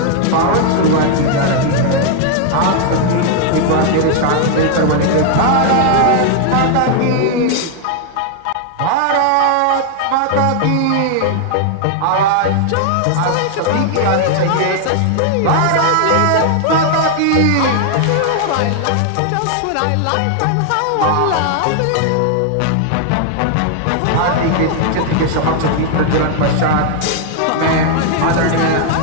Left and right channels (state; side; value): different; both; correlation 0.00